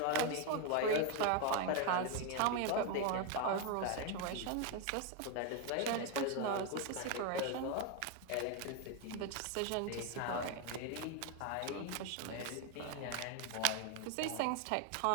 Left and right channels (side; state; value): both; different; correlation 0.01